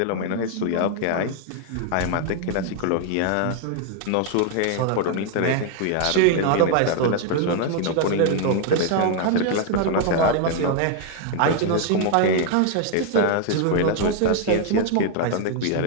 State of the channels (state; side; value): different; both; correlation 0.00